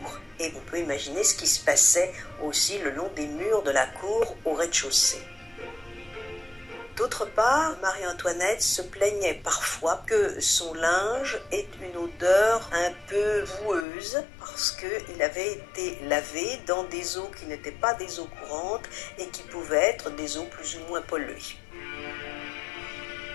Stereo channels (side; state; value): right; drops out; at 13.9 s